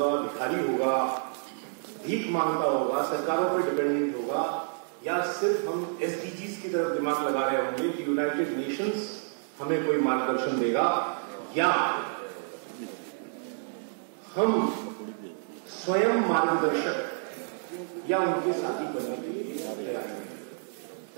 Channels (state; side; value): silent; left; digital silence